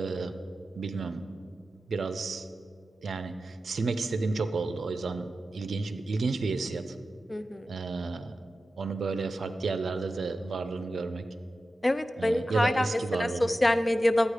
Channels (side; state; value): both; normal; correlation 0.93